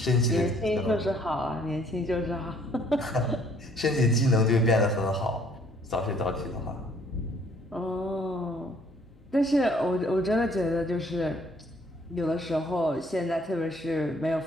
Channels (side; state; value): both; normal; correlation 0.61